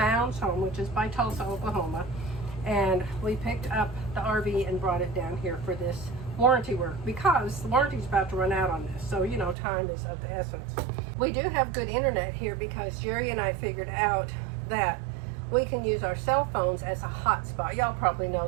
home, which is by Tulsa, Oklahoma, and we picked up the RV and brought it down here for this warranty work because the warranty's about to run out on this. So, you know, time is of the essence. We do have good internet here because Jerry and I figured out that we can use our cell phones as a hotspot. Y'all probably know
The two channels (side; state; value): left; drops out; at 9.6 s